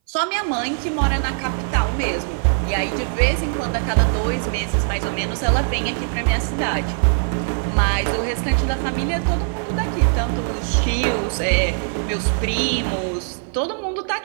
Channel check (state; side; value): silent; left; 61 dB below the other